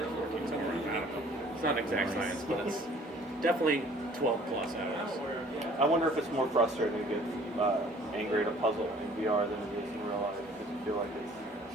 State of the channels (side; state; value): both; normal; correlation 0.54